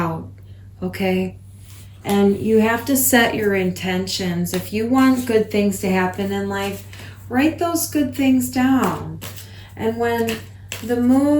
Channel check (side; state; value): both; identical; correlation 1.00